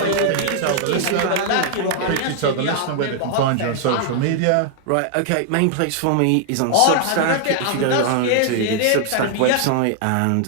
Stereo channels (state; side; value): different; both; correlation 0.00